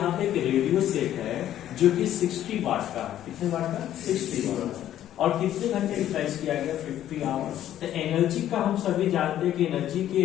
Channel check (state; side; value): quieter; right; 11.9 dB